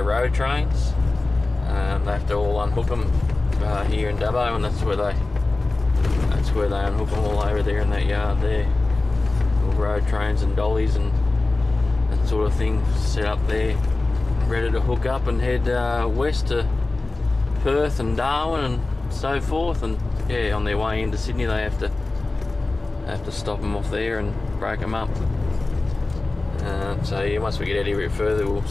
road trains. They have to all unhook them here in Dubbo, and that's where they unhook them all over there in that yard there. All road trains and dollies and that sort of thing set up there, ready to hook up and head west to Perth and Darwin and so forth. And yeah, on their way into Sydney they have to stop them off there and break them up. So yeah, once we get out here a bit further, we'll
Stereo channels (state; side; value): quieter; right; 3.2 dB